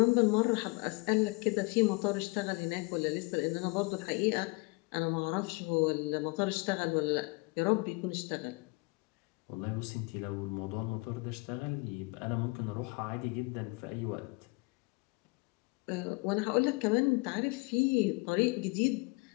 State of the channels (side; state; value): right; quieter; 27.8 dB